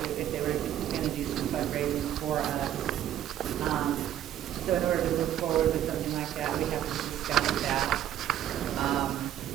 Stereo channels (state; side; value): quieter; left; 11.4 dB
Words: if they were going to do some fundraising for us. So in order to move forward with something like that, we have to discuss that.